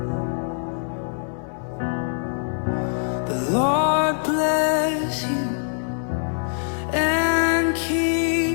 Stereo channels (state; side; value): silent; right; 63 dB below the other